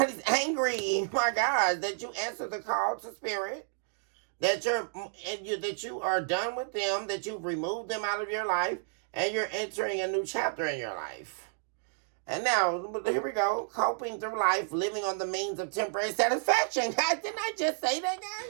angry, my God, that you answered the call to spirit, that you are done with them, that you've removed them out of your life, and you're entering a new chapter in your life. And now, here we go, coping through life, living on the means of temporary satisfaction. Guys, didn't I just say that,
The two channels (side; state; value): left; silent; digital silence